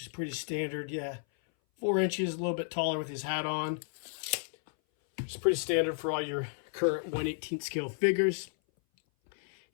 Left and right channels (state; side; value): silent; right; 56 dB below the other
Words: is pretty standard. Yeah, 4 inches, a little bit taller with his hat on. It's pretty standard for all your current 1/18 scale figures.